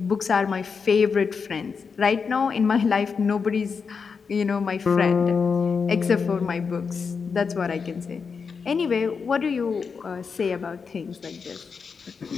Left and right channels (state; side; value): quieter; right; 5.6 dB